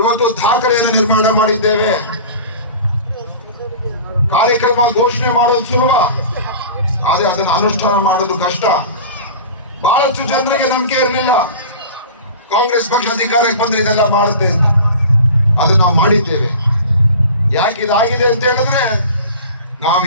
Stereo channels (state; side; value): inverted; both; correlation -0.37